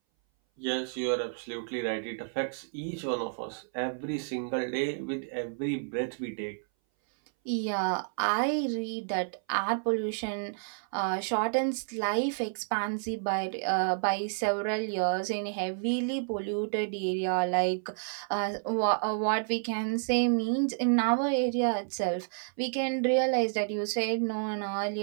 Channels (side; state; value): left; silent; 58 dB below the other